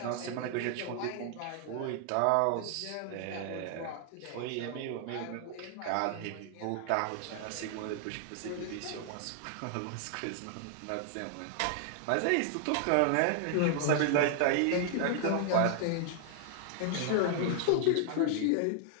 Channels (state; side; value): different; both; correlation 0.00